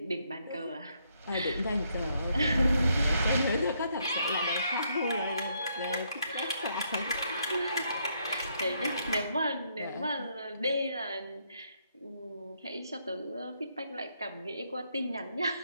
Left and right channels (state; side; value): inverted; both; correlation -0.74